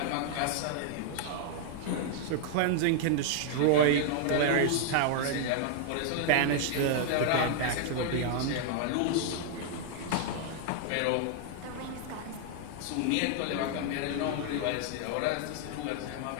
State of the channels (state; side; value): different; both; correlation 0.00